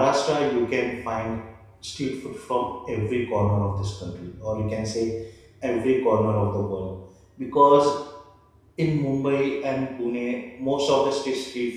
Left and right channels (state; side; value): identical; both; correlation 1.00